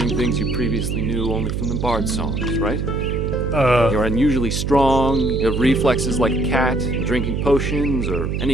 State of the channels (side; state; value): right; noise; hum, 1 dB below the sound